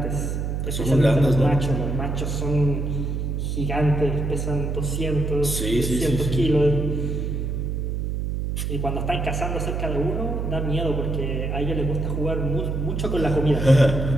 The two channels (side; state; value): right; noise; hum, 2 dB below the sound